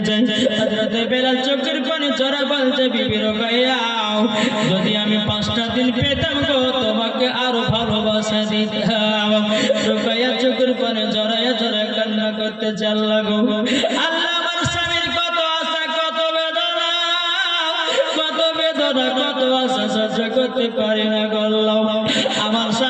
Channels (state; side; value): identical; both; correlation 1.00